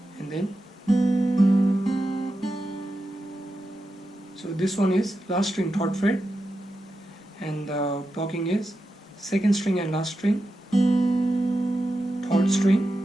And then so this one is last string, third fret, and the plucking is second string and last string, third string,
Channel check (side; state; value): both; normal; correlation 0.89